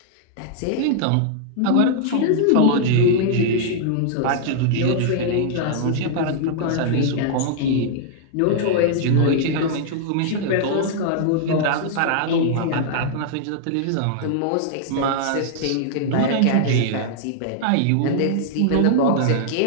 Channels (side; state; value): both; different; correlation -0.01